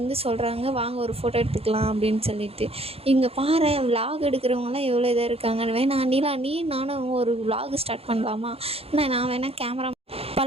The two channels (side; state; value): left; late; 0.29 ms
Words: சொல்கிறாங்க வாங்க ஒரு ஃபோட்டோ எடுத்துக்கலாம் அப்படின்னு சொல்லிட்டு. இங்கே பாரு விலாக் எடுக்கிறவங்களாம் எவ்வளோ இதாக இருக்காங்க, வேணா நீலா நீ நானும் ஒரு விலாக் ஸ்டார்ட் பண்ணலாமா, நான் வேணால் கேமரா